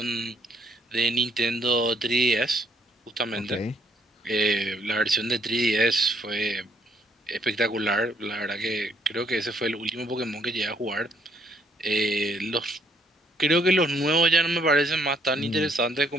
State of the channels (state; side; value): normal; both; correlation 0.68